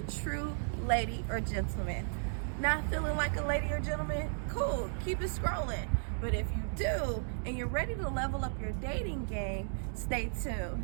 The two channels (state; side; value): silent; left; digital silence